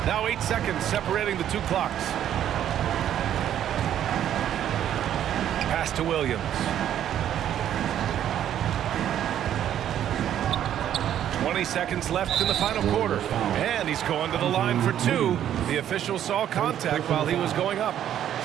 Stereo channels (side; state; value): left; quieter; 10.7 dB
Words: Now 8 seconds separating the two clocks. Pass to Williams. 20 seconds left in the final quarter. And he's going to the line for 2. The official saw contact while he was going up.